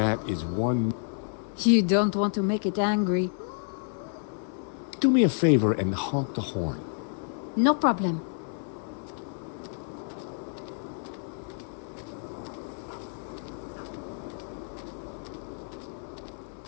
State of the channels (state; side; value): silent; right; 56 dB below the other